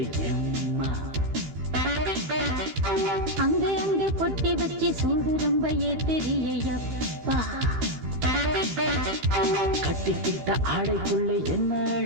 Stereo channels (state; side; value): late; left; 15 ms